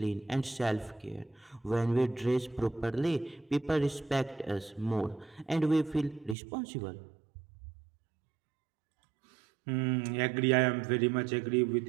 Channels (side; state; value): left; drops out; at 6.4 s